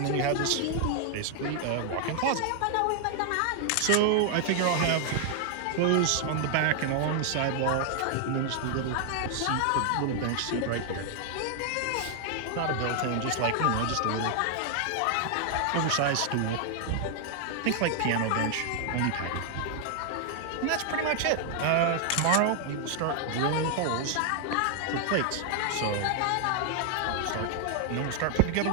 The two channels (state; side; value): different; both; correlation 0.00